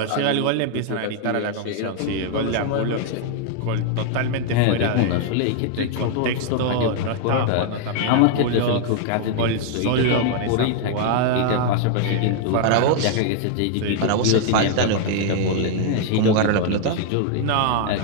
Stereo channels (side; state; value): both; different; correlation 0.00